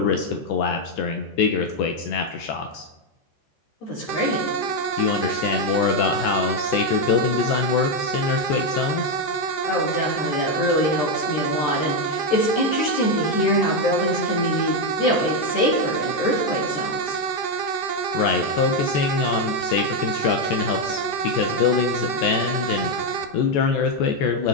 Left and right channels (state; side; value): late; right; 14 ms